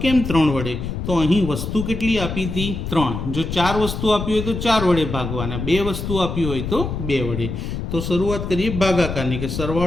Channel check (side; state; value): left; noise; rumble, 5 dB below the sound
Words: કેમ 3 વડે? તો અહીં વસ્તુ કેટલી આપી હતી? 3. જો 4 વસ્તુ આપી હોય તો 4 વડે ભાગવાના, 2 વસ્તુ આપી હોય તો 2 વડે. તો શરૂઆત કરીએ ભાગાકારની કે